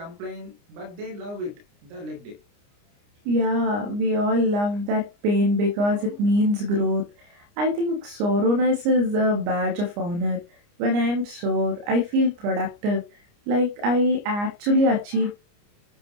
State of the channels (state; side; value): late; left; 29 ms